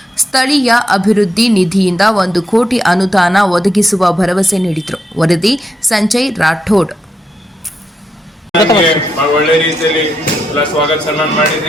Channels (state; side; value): normal; both; correlation 0.83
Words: ಸ್ಥಳೀಯ ಅಭಿವೃದ್ಧಿ ನಿಧಿಯಿಂದ 1 ಕೋಟಿ ಅನುದಾನ ಒದಗಿಸುವ ಭರವಸೆ ನೀಡಿದರು. ವರದಿ ಸಂಜಯ್ ರಾಠೋಡ್. ಒಳ್ಳೆ ರೀತಿಯಲ್ಲಿ ಸ್ವಾಗತ ಸನ್ಮಾನ